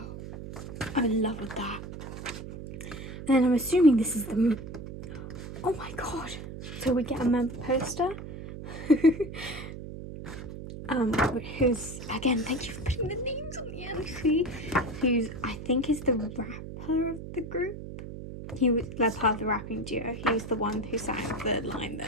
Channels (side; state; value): right; noise; hum, 10 dB below the sound